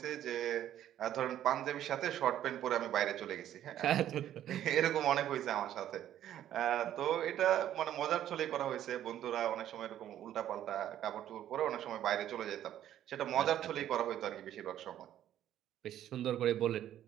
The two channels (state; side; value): quieter; left; 11.6 dB